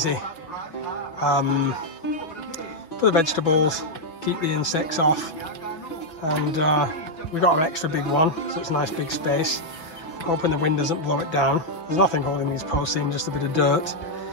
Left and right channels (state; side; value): late; right; 6.2 ms